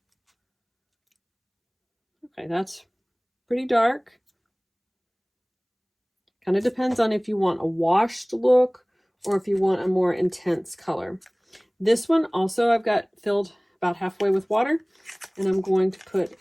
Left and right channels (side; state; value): both; identical; correlation 1.00